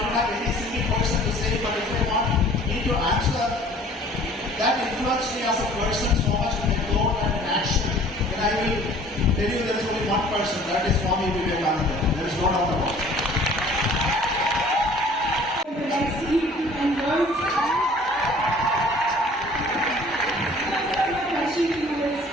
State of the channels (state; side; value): normal; both; correlation 0.51